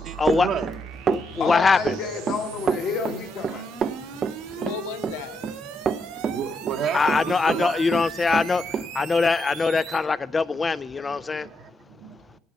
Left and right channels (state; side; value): normal; both; correlation 0.80